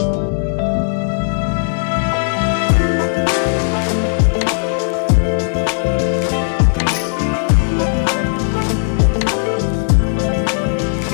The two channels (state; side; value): silent; right; digital silence